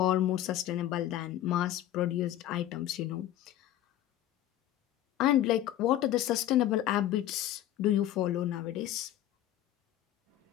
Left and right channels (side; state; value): right; quieter; 12.7 dB